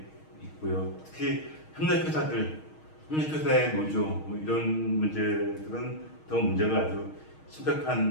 있고요. 특히 협력회사의 노조, 뭐 이런 문제들은 더 문제가 아주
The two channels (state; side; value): late; right; 6.4 ms